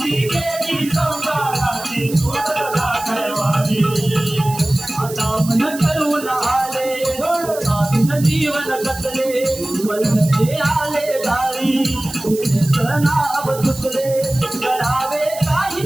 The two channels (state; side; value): noise; right; hiss, 13 dB below the sound